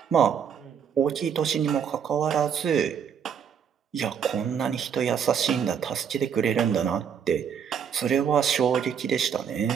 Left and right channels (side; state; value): left; quieter; 7.7 dB